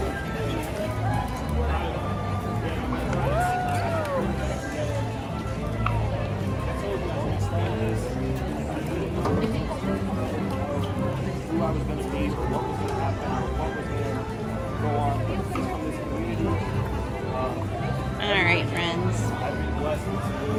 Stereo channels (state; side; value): identical; both; correlation 1.00